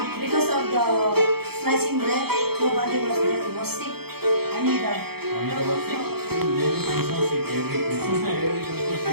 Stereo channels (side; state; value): left; late; 0.96 ms